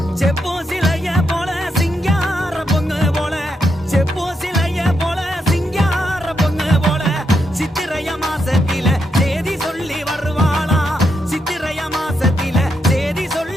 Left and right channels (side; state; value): both; normal; correlation 0.82